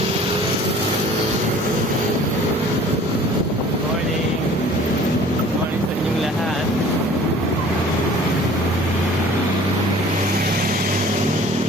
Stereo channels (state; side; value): normal; both; correlation 0.49